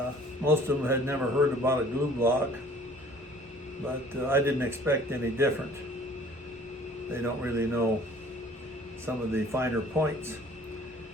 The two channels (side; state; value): both; normal; correlation 0.52